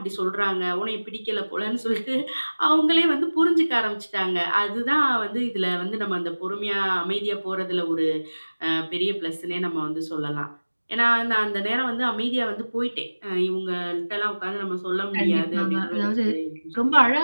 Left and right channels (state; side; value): inverted; both; correlation -1.00